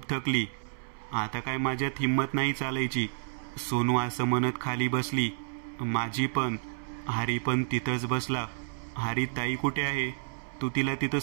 थकली, आता काय माझ्यात हिंमत नाही चालायची. सोनू असं म्हणत खाली बसली. माझी पण. हरी पण तिथंच बसला. हरी ताई कुठे आहे? तू तिला तिथं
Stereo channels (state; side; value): silent; left; 58 dB below the other